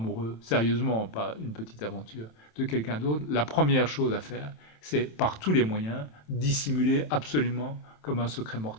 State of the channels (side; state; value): right; late; 27 ms